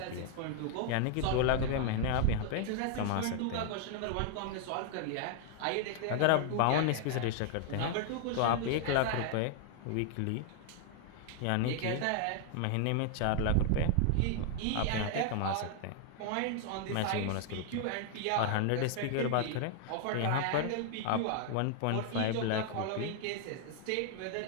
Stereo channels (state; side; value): different; both; correlation 0.00